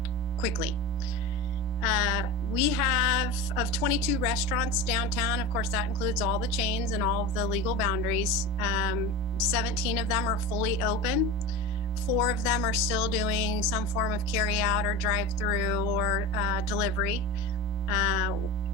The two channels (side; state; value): both; normal; correlation 0.28